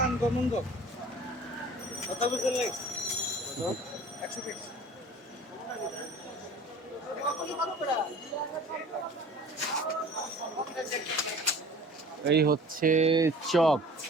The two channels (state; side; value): normal; both; correlation 0.45